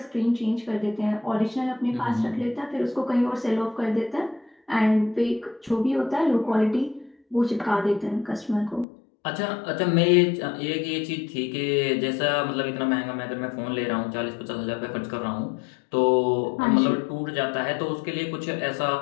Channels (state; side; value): drops out; right; at 8.8 s